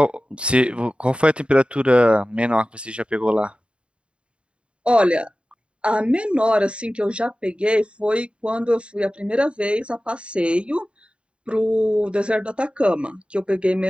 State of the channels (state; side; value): late; left; 0.056 ms